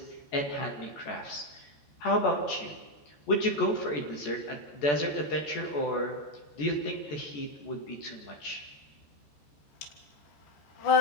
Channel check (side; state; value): right; late; 14 ms